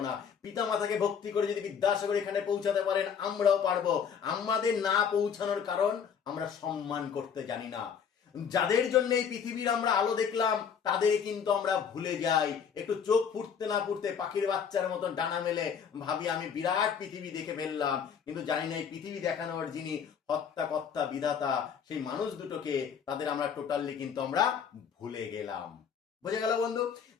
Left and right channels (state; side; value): quieter; right; 7.2 dB